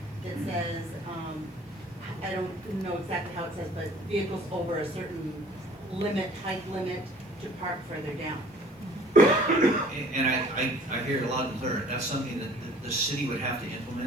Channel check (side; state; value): both; normal; correlation 0.52